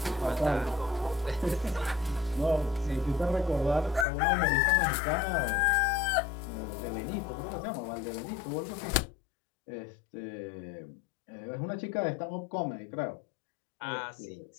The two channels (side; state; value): right; drops out; at 4.0 s